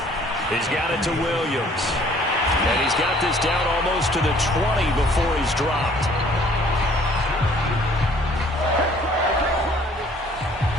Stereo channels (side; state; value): both; normal; correlation 0.57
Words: He's got it to Williams. And he's got this down almost to the 20 before he's dropped.